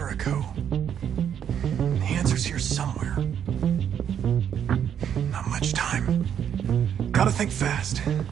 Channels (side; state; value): left; quieter; 8.9 dB